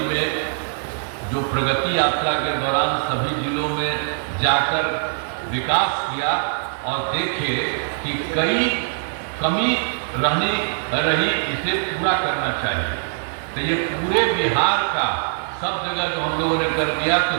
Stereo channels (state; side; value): silent; left; digital silence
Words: में जो प्रगति यात्रा के दौरान सभी जिलों में जाकर विकास किया और देखे कि कई कमी रही, इसे पूरा करना चाहिए। तो ये पूरे बिहार का सब जगह जो हम लोगों ने कर दिया, तो